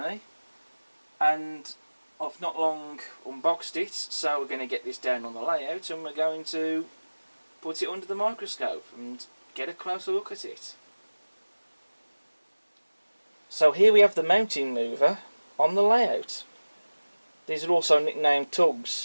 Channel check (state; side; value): inverted; both; correlation -1.00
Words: and I've not long unboxed it, so we're going to get this down on the layout and we're going to put it under the microscope and get a closer look at it. So here we have the mounting mover on the layout. These are also nicknamed